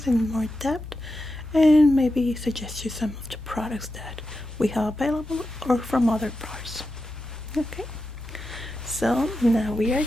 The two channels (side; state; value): both; normal; correlation 0.90